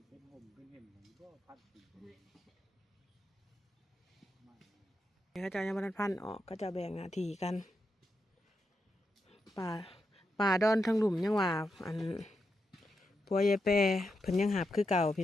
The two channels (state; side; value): normal; both; correlation 0.85